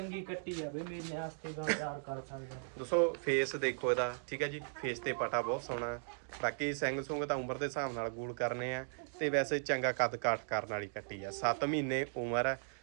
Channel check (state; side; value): silent; left; digital silence